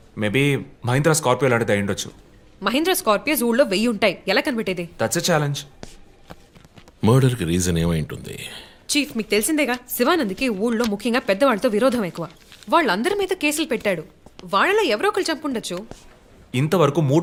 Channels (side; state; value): both; identical; correlation 1.00